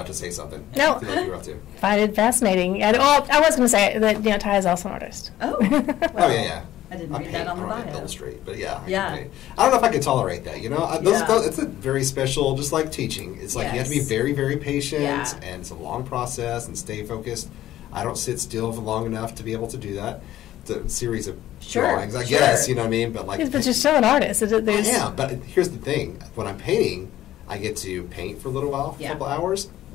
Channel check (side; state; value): right; quieter; 13.6 dB